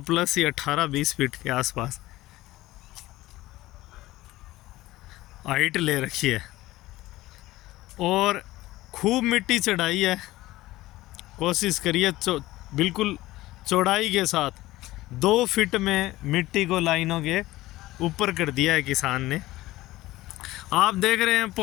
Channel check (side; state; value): right; quieter; 17.4 dB